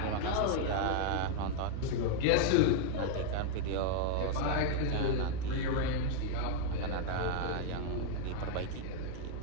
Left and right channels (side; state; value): both; different; correlation 0.00